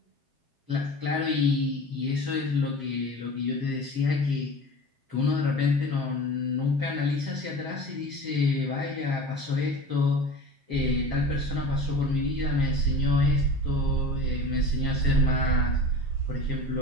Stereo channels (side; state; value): left; late; 7.4 ms